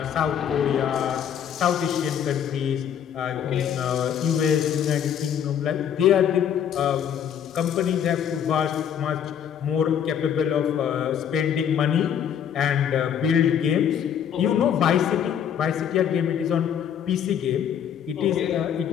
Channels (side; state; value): right; quieter; 8.8 dB